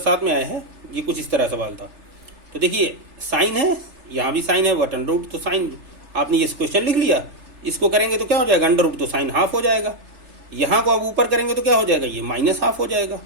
में आया है, ये कुछ इस तरह सवाल था। तो देखिए साइन है, यहाँ भी साइन है, वट अंडर रूट, तो साइन आपने ये क्वेश्चन लिख लिया, इसको करेंगे तो क्या हो जाएगा, अंडर रूट, तो साइन हाफ हो जाएगा। यहाँ को अब ऊपर करेंगे तो क्या हो जाएगा, ये माइनस हाफ हो जाएगा।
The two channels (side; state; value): left; late; 3.3 ms